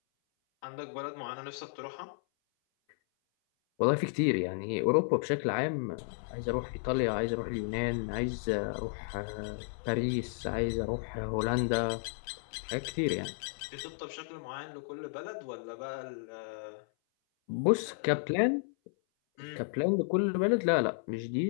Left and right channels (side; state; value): right; silent; 56 dB below the other